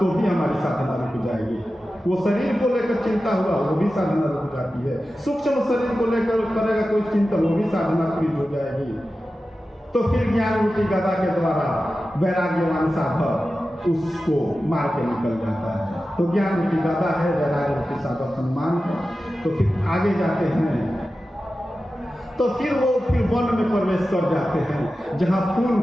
भी हमारी साधना रुक जाएगी। वो शरीर को लेकर चिंता हुआ वो भी साधना रुक जाती है। सूक्ष्म शरीर को लेकर करेगा कोई चिंतन, वो भी साधना फ्रीज हो जाएगी। तो फिर ज्ञान रूपी गदा के द्वारा वैराग्यवान साधक उसको मार के निकल जाता है। तो ज्ञान रूपी गदा है, वैराग्य रूपी साधक हनुमान है। तो फिर आगे जाते हैं, तो फिर वो वन में प्रवेश कर जाते हैं जहाँ फूल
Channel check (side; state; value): both; normal; correlation 0.93